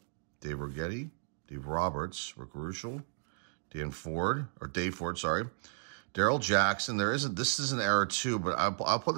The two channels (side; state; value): left; silent; digital silence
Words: Dave Righetti, Dave Roberts, Rick Ruschel, Dave Ford, sorry. Daryl Jackson. This is an error too, but I'll put